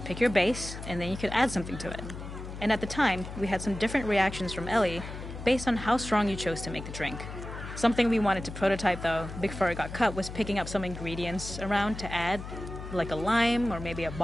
pick your base, and then you could add something to it. And at the time, we had some different reactions from Ellie based on how strong you chose to make the drink. Something we wanted to prototype, though, before it got cut, was picking up some ingredients around to add, like a lime or maybe a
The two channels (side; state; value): left; noise; hum, 10 dB below the sound